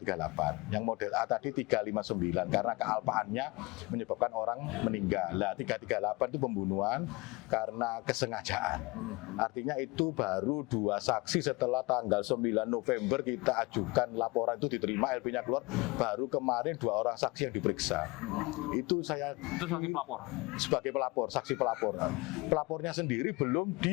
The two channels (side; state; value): right; quieter; 24.6 dB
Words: Yang model A tadi 359 karena kealpaannya menyebabkan orang meninggal. Nah, 338 itu pembunuhan karena kesengajaan. Artinya itu baru 2 saksi setelah tanggal 9 November kita ajukan laporan itu diterima, LP-nya keluar, baru kemarin 2 orang saksi yang diperiksa. Itu sebagai pelapor? Sebagai pelapor, saksi pelapor. Pelapornya sendiri belum